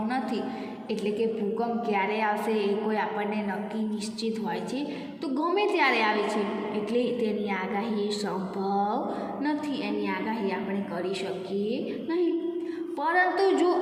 નથી. એટલે કે ભૂકંપ ક્યારે આવશે એ કોઈ આપણને નક્કી નિશ્ચિત હોય છે, તો ગમે ત્યારે આવે છે, એટલે તેની આગાહી સંભવ નથી. એની આગાહી આપણે કરી શકીએ નહીં. પરંતુ જો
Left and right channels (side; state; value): both; identical; correlation 1.00